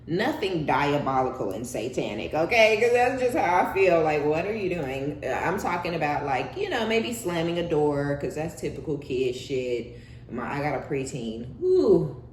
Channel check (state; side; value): identical; both; correlation 1.00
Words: Nothing diabolical and satanic, okay? Because that's just how I feel. Like, what are you doing? I'm talking about, like, you know, maybe slamming a door, because that's typical kid shit. I got a preteen. Ooh,